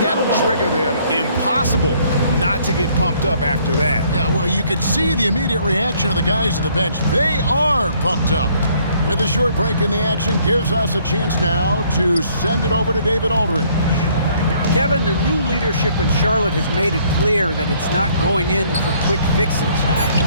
that'll trigger them. Impossible not to get pumped up after that. Yeah, well, you can see the immediate reaction of the guys on the bench. They are pumped up. With a short break in the action, gives us a chance now to send it over to David Aldridge. Kevin, the new leadership in Charlotte has made it clear that it's not going in for quick fixes.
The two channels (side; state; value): both; inverted; correlation -0.63